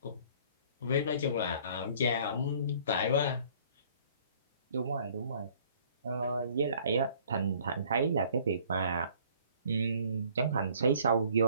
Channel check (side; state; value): both; inverted; correlation -0.56